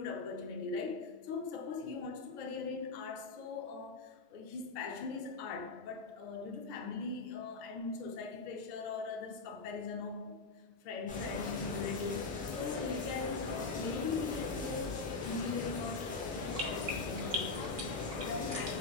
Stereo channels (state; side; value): quieter; right; 3.8 dB